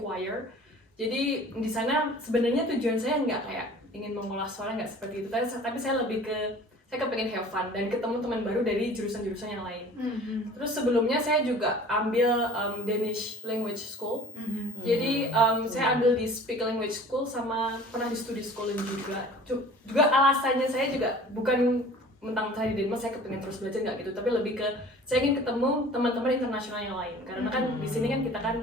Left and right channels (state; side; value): normal; both; correlation 0.46